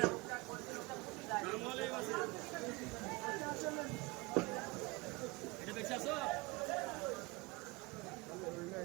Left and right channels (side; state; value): left; quieter; 24.7 dB